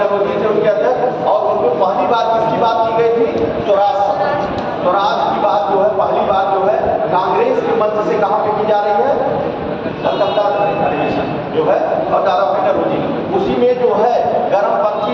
थे उनके अध्यक्ष। और उसमें पहली बार किसकी बात की गई थी? स्वराज की बात जो है पहली बार जो है कांग्रेस के मंच से कहाँ पे की जा रही है? कलकत्ता अधिवेशन जो है और दादा भाई नौरोजी। उसी में जो है गर्मपंथी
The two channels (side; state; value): both; identical; correlation 1.00